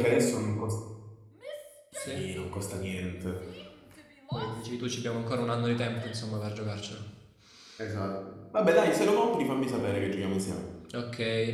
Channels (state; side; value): identical; both; correlation 1.00